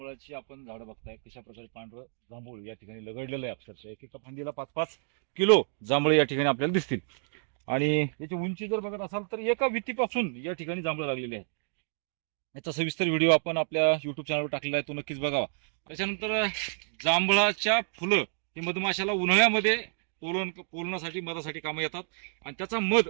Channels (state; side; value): silent; left; 58 dB below the other